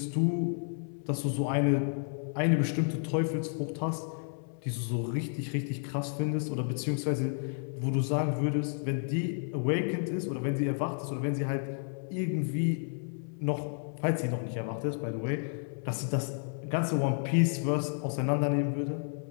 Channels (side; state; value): right; silent; 57 dB below the other